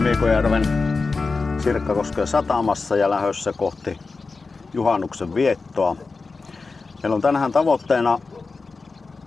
Sirkkakosken satamassa ja lähdössä kohti juhannuksen viettoa. Meillä on tänään tavoitteena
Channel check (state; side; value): quieter; right; 4.1 dB